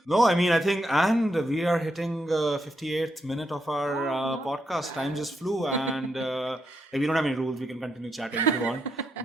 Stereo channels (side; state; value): both; normal; correlation 0.81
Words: No, I mean, I think, and we are hitting 58th minute of our podcast. Time just flew, and we don't have any rules. We can continue chatting if you want.